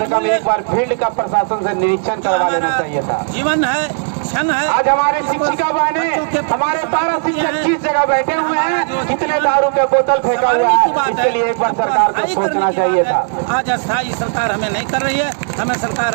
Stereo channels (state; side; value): silent; left; digital silence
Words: कम एक बार फील्ड का प्रशासन से निरीक्षण करवा लेना चाहिए था। जीवन है, क्षण है। आज हमारे शिक्षिका बहनें, हमारे पारा शिक्षक किस जगह बैठे हुए हैं, कितने दारू के बोतल फेंका हुआ है, इसके लिए एक बार सरकार को सोचना चाहिए था। आज अस्थायी सरकार हमें नहीं कर रही है, हमें सरकार